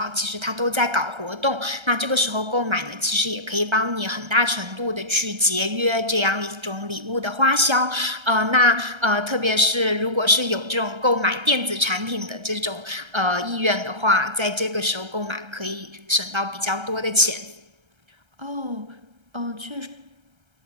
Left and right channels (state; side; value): late; left; 1.3 ms